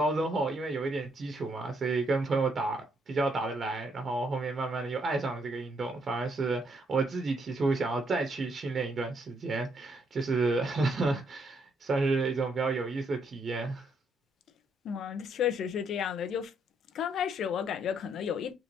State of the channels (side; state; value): both; normal; correlation 0.73